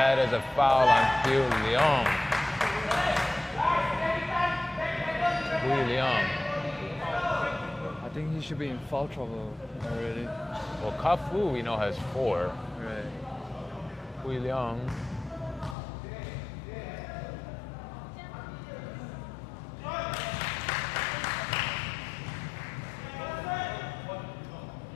is a foul on Piu Liang. Piu Liang. I think he should be in foul trouble already. Well, Kafu, we know, has 4. Right. Piu Liang.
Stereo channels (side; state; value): right; drops out; at 15.8 s